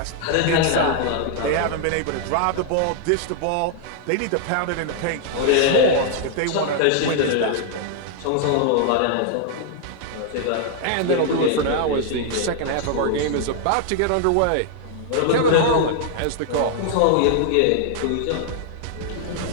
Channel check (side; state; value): both; different; correlation 0.00